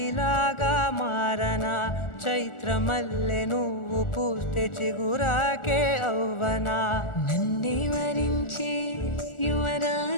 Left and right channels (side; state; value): right; late; 1.4 ms